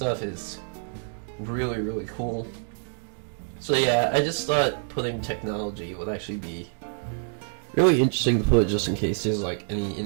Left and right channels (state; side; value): silent; left; digital silence